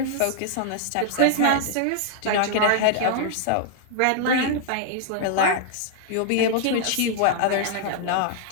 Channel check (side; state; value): both; different; correlation -0.01